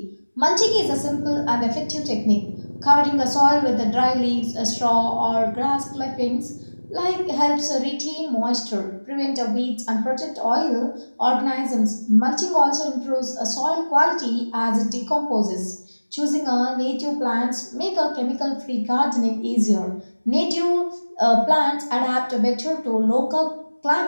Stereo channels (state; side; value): inverted; both; correlation -1.00